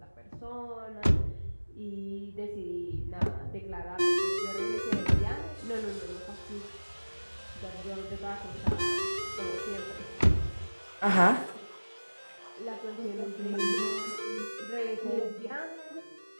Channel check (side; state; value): both; inverted; correlation -1.00